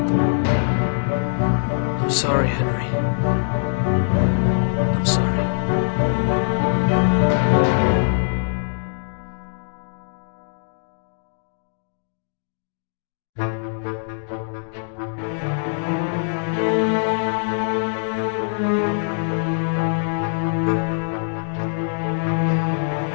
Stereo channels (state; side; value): silent; right; digital silence